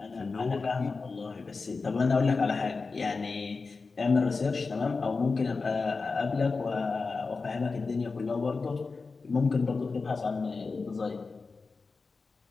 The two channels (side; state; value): right; quieter; 4.3 dB